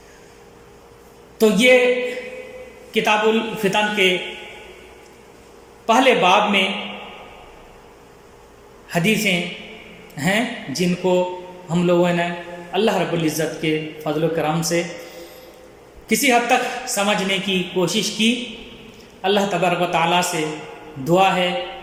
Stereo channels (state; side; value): identical; both; correlation 1.00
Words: تو یہ کتاب الفتن کے پہلے باب میں حدیثیں ہیں جن کو ہم لوگوں نے اللہ رب العزت کے فضل و کرم سے کسی حد تک سمجھنے کی کوشش کی۔ اللہ تبارک و تعالیٰ سے دعا ہے